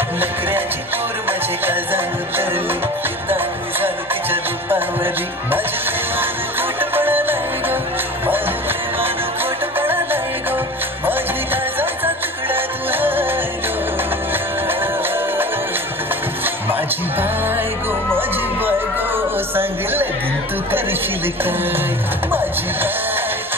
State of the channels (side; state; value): both; normal; correlation 0.37